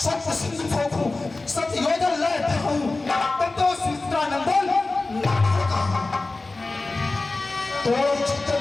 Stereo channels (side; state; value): right; quieter; 3.3 dB